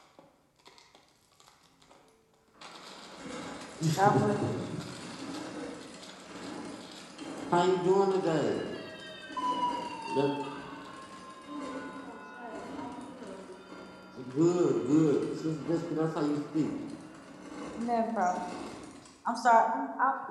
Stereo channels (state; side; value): identical; both; correlation 1.00